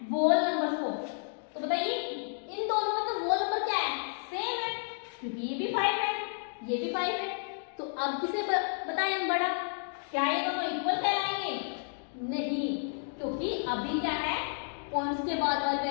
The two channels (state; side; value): silent; right; digital silence